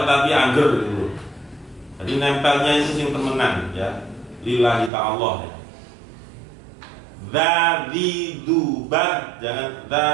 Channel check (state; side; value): drops out; left; at 4.9 s